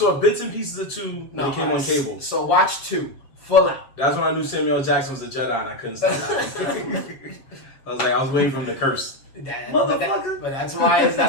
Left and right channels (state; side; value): late; right; 7.4 ms